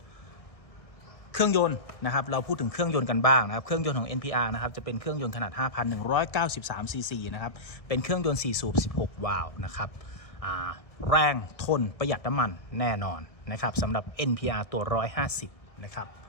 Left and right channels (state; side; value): late; right; 1.6 ms